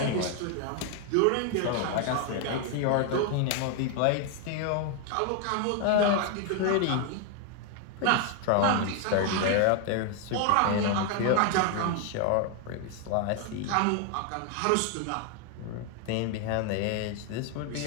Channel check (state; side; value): different; both; correlation 0.01